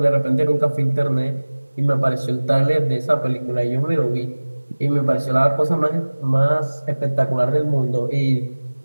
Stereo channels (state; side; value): inverted; both; correlation -1.00